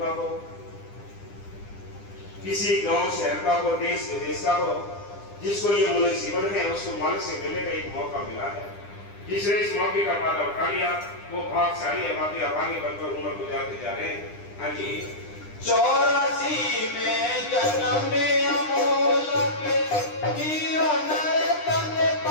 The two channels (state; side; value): late; right; 9.9 ms